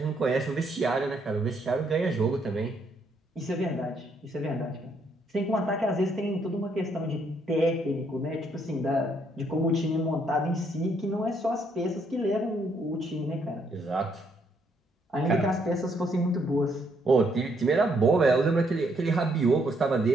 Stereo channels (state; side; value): normal; both; correlation 0.72